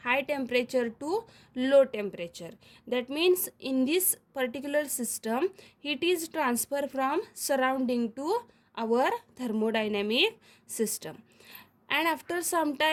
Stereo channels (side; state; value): both; identical; correlation 1.00